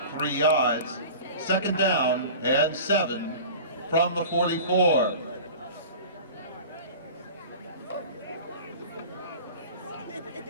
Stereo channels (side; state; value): both; inverted; correlation -0.38